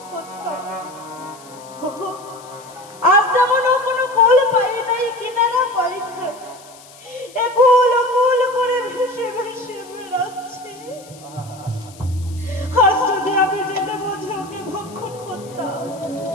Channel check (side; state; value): left; noise; hiss, 22 dB below the sound